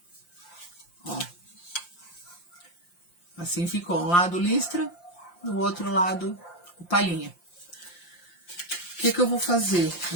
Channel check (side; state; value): right; late; 5.7 ms